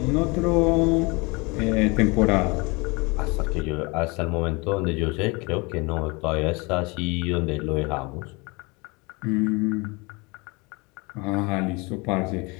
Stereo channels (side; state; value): right; quieter; 27.1 dB